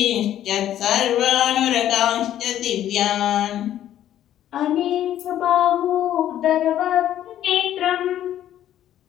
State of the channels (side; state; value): right; quieter; 11.7 dB